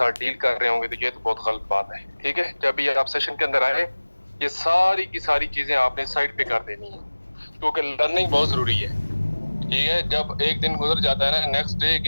ڈیل کر رہے ہوں گے، تو یہ تو بہت غلط بات ہے، ٹھیک ہے۔ جب یہ آپ سیشن کے اندر آئے، یہ ساری کی ساری چیزیں آپ نے سائڈ پہ کر دینی ہیں، کیونکہ لرننگ بہت ضروری ہے، ٹھیک ہے۔ جب ایک دن گزر جاتا ہے نا، نیکسٹ ڈے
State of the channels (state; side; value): inverted; both; correlation -1.00